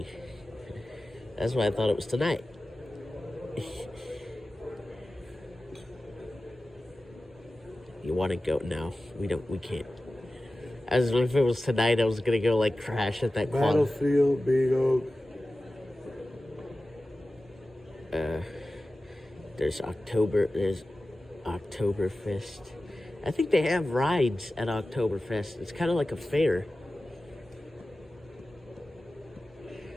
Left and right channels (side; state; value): both; normal; correlation 0.95